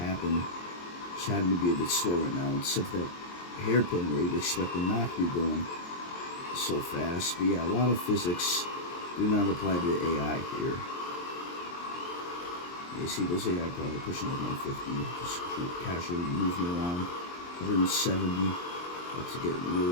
to be a bit slow right now. Except that hairpin where you'd expect them not to be going so fast. But yeah, a lot of physics do not apply to the AI here. You see those AI probably pushing like 150, just casually moving along. 170, let's get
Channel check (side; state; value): right; late; 23 ms